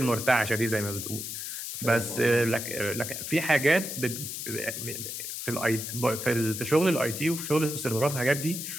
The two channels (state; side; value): noise; left; hiss, 6 dB below the sound